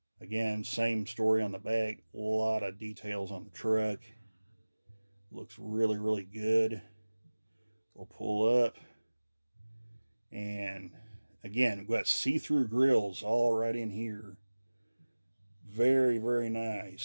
Again, same story on the back. A lot of details on the truck. Looks really, really good. We'll pull up. And again, we've got see-through grills all right in here. Very, very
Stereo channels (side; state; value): both; inverted; correlation -1.00